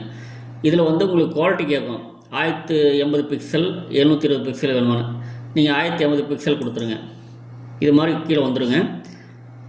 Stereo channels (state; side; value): identical; both; correlation 1.00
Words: இதில் உங்களுக்கு குவாலிட்டி கேட்கும். 1080 பிக்சல் 720 பிக்சல் வேணுமானு. நீங்கள் 1080 பிக்சல் கொடுத்துருங்க. இது மாதிரி கீழே வந்துடுங்க.